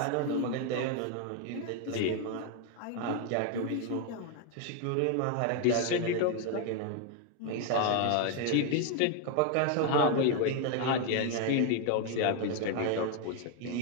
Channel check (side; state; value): both; different; correlation 0.01